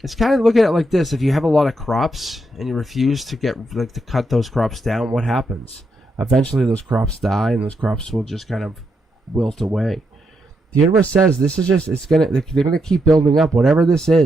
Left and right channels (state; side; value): normal; both; correlation 0.81